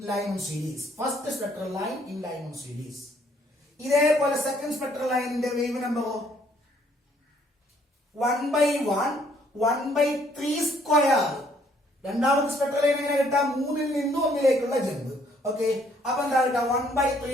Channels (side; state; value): both; normal; correlation 0.65